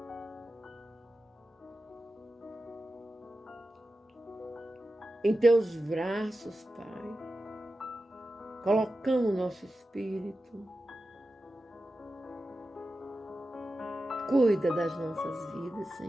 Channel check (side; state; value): both; normal; correlation 0.92